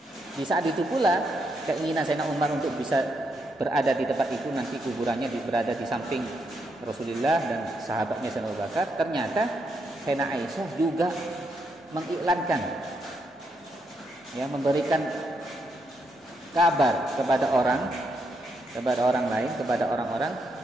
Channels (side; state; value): both; normal; correlation 0.79